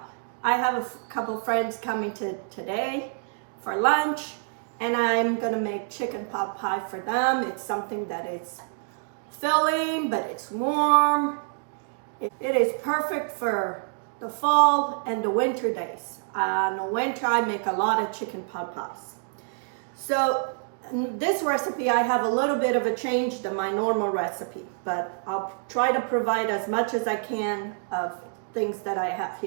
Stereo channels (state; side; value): silent; left; digital silence